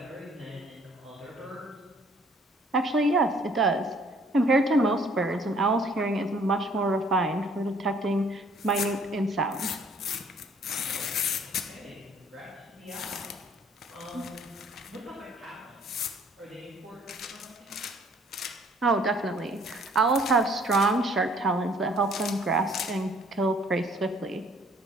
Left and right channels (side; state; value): both; normal; correlation 0.59